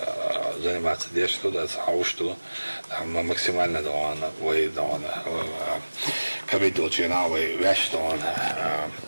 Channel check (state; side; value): inverted; both; correlation -1.00